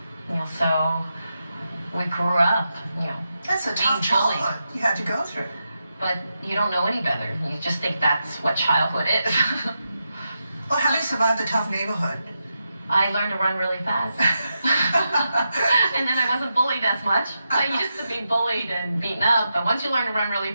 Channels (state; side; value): inverted; both; correlation -0.87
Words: So we grew up, That's a tough childhood you had to go through. But you don't know any better. You just think that's what childhood is. Well, how do you survive the tough neighborhood? I learned to run really fast. And then I wasn't bullied as much. I used to be bullied and beaten up, but once you learn to run really